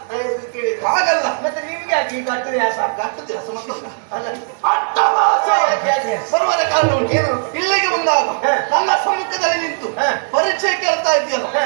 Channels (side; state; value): left; silent; digital silence